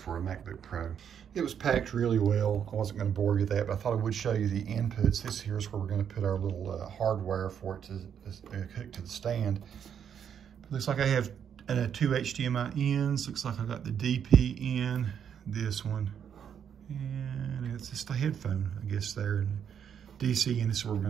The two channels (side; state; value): left; quieter; 8.3 dB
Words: a MacBook Pro. It was packed really well. I wasn't gonna bore you with that, but I thought I would show you the inputs. This here is where we're gonna put our little hardware for it to hook to the stand. It looks like I have 2 HDMI ins. Looks like I got the DP in, this one, and it's just a headphone, I guess there, and DC, and this is where we're